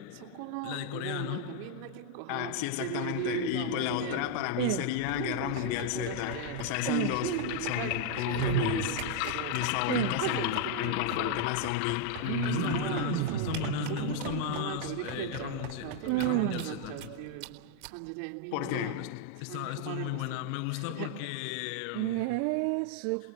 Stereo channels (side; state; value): both; different; correlation 0.00